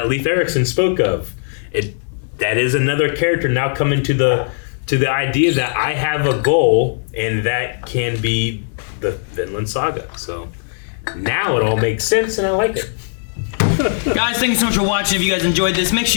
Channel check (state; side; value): silent; right; 67 dB below the other